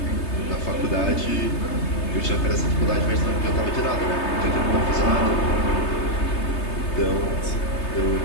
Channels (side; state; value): right; late; 3.3 ms